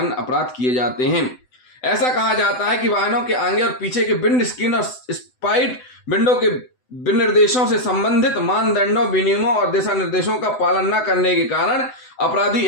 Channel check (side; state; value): right; late; 7.9 ms